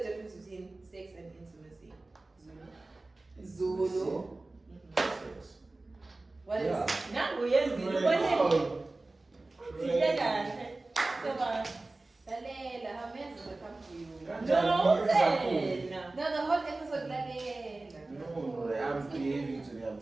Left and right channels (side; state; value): left; quieter; 3.1 dB